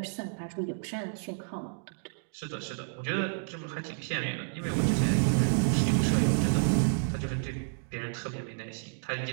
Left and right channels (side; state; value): left; silent; digital silence